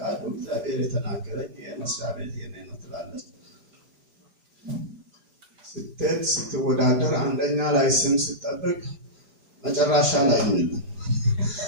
እግዚአብሔር የተናገረኝ የመስሪያ ቤት የኔ ነው ትላለች። ስትወዳደር አንደኛ ላይ ስም ስትጠብቅ መጨረሻ ላይ ምን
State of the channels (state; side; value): late; left; 4.9 ms